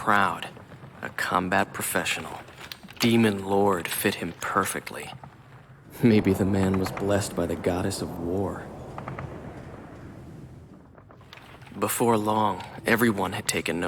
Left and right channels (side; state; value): both; identical; correlation 1.00